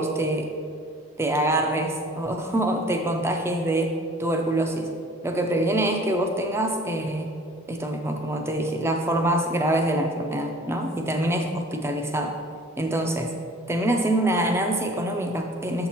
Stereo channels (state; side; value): normal; both; correlation 0.49